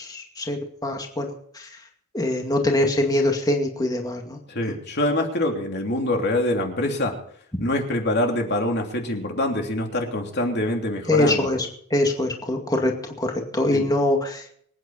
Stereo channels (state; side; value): normal; both; correlation 0.44